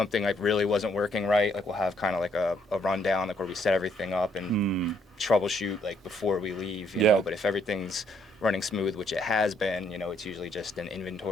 like, really wasn't working right, like, we'll have kind of like a rundown, like, where we set everything up and troubleshoot, like, before we leave, you know. But if everything's running smooth, which it has been, it's usually just an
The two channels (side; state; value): both; normal; correlation 0.70